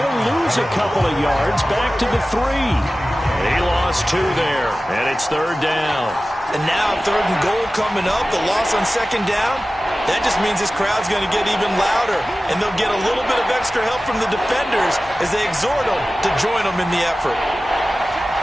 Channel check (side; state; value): both; normal; correlation 0.96